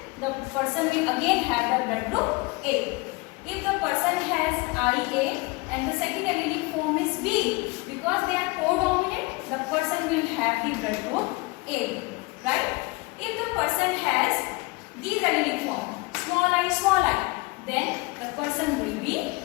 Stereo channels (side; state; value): right; quieter; 25.0 dB